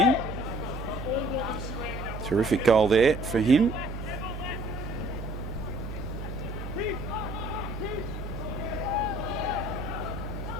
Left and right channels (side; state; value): right; noise; hum, 7 dB below the sound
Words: Terrific goal there for him.